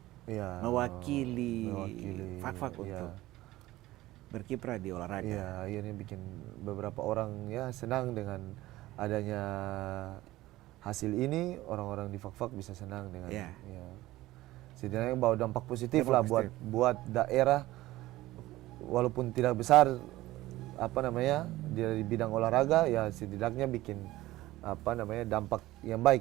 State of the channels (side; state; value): left; quieter; 17.1 dB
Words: Iya. mewakili Fakfak iya. untuk berkiprah di olahraga. Iya, akhirnya bikin beberapa orang ya senang dengan adanya hasil ini, orang-orang di Fakfak bisa senang dengan Iya. ya. Setidaknya bawa dampak positif Dampak lah positif. buat daerah, walaupun tidak besar apa namanya di bidang olahraga, ya setidaknya bikin apa namanya dampak yang